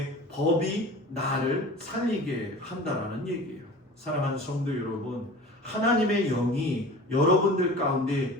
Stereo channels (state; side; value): normal; both; correlation 0.39